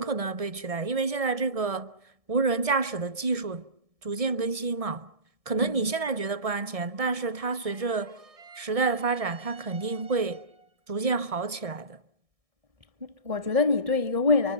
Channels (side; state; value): left; late; 1.6 ms